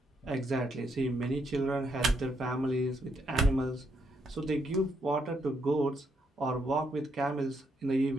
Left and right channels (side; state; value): both; normal; correlation 0.77